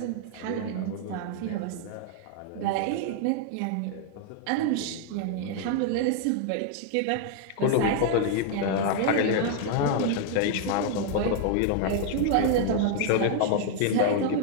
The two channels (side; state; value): both; different; correlation 0.00